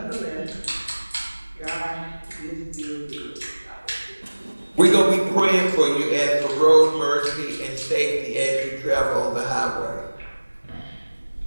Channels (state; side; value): inverted; both; correlation -1.00